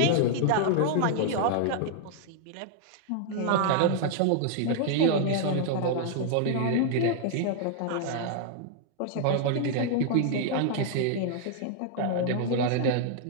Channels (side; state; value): both; different; correlation -0.01